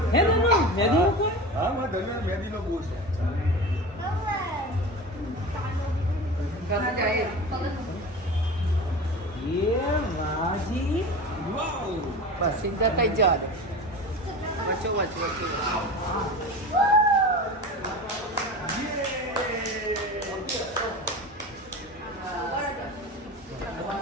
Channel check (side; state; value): both; normal; correlation 0.31